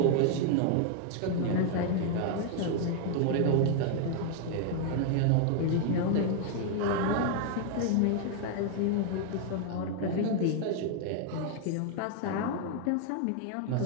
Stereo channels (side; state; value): both; different; correlation 0.00